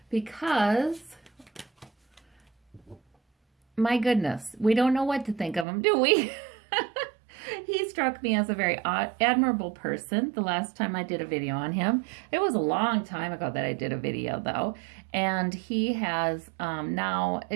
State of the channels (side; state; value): left; drops out; at 5.7 s